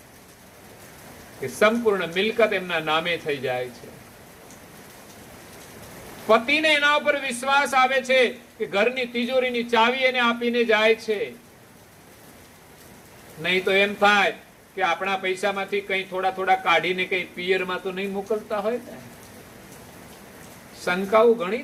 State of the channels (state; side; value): identical; both; correlation 1.00